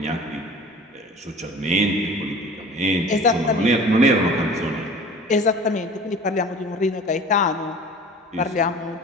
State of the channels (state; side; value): normal; both; correlation 0.42